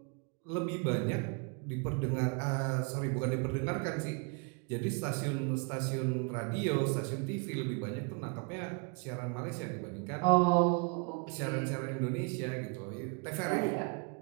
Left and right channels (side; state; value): left; quieter; 35.0 dB